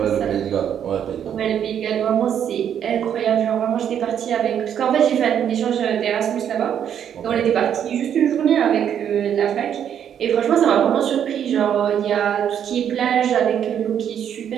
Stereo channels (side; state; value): left; quieter; 9.1 dB